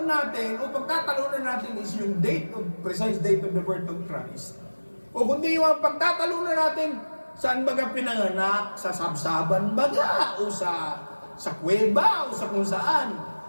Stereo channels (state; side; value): inverted; both; correlation -1.00